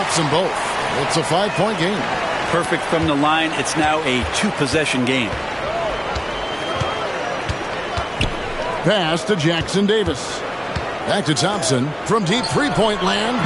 them both. It's a 5-point game. Perfect from the line. It's now a 2-possession game. pass to Jackson Davis. Back to Thompson from deep three-point land.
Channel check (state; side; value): identical; both; correlation 1.00